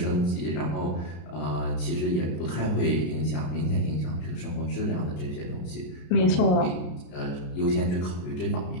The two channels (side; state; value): right; late; 33 ms